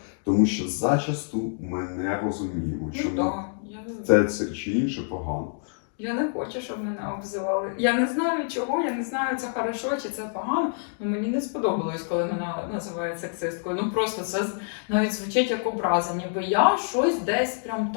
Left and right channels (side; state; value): right; silent; digital silence